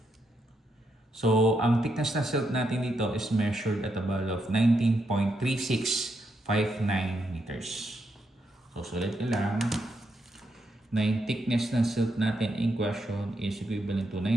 So, ang thickness na silt natin dito is measured at a value of 19.3659 meters. So, sulit nyo lang na yung thickness ng silt natin in question is equivalent to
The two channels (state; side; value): normal; both; correlation 0.81